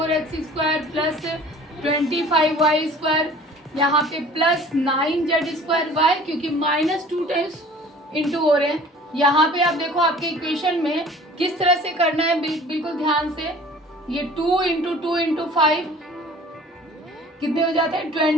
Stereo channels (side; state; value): both; normal; correlation 0.48